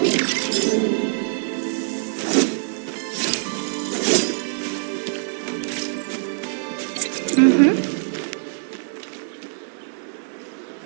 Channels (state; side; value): silent; left; 63 dB below the other